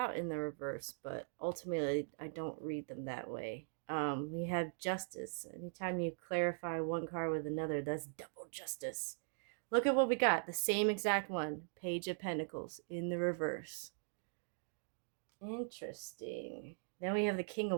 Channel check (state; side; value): silent; left; digital silence